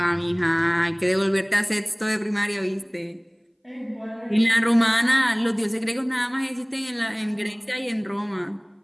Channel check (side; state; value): both; identical; correlation 1.00